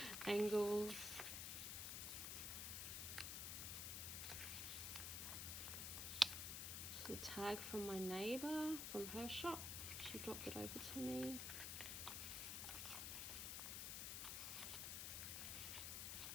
angles. Just a tag from my neighbour from her shop. She dropped it over to me.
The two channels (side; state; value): left; noise; hiss, 2 dB below the sound